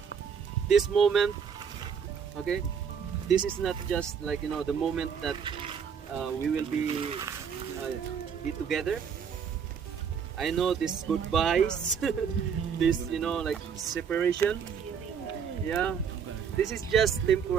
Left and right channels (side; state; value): left; quieter; 7.0 dB